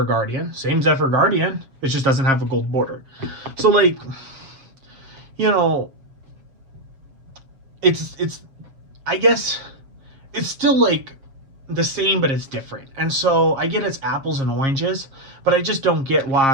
Guardian, same Zephyr Guardian, it just doesn't have a gold border. So, like, you know, it's I guess it's still like the same, but it's different. And so I get it's apples and oranges, but I just don't get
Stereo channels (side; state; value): left; late; 7.4 ms